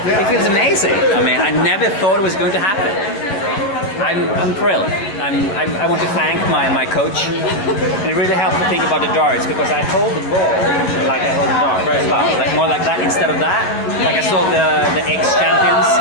It feels amazing. I mean, I never thought it was going to happen. I'm thrilled. I want to thank my coach. And it really helped to think about the darts, because I hold the ball like I hold the dart as well. Like more like that instead of that. Like I saw the ex-champions,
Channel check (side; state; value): right; late; 10 ms